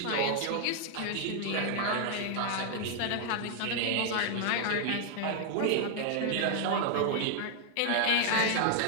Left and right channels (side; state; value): both; different; correlation 0.00